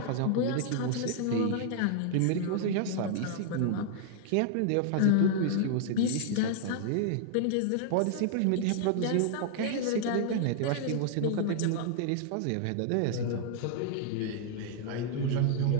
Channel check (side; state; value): both; different; correlation -0.01